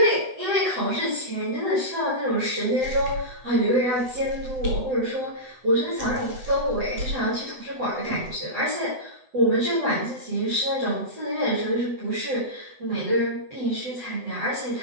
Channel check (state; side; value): late; left; 8.0 ms